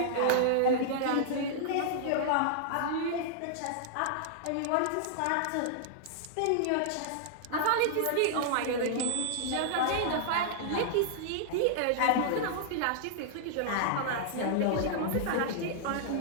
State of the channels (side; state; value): both; different; correlation -0.01